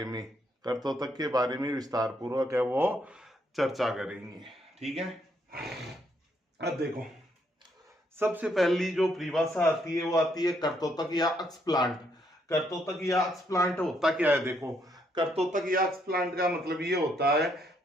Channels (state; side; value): normal; both; correlation 0.73